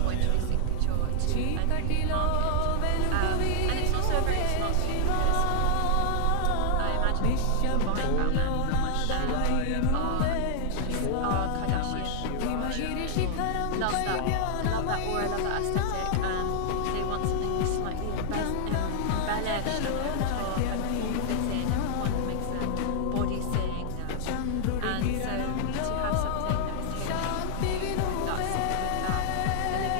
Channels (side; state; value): both; different; correlation -0.01